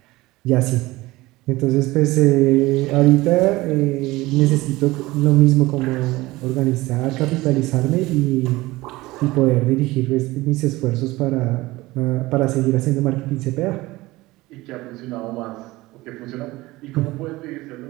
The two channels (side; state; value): left; quieter; 19.6 dB